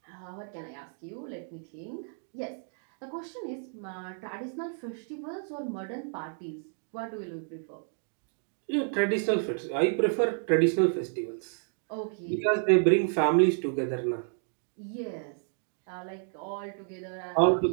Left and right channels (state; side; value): silent; left; 57 dB below the other